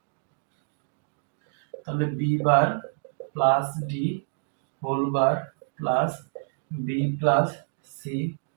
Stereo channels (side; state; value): left; silent; digital silence